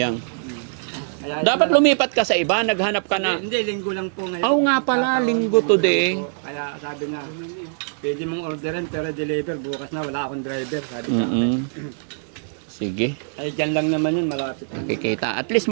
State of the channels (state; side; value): silent; left; 64 dB below the other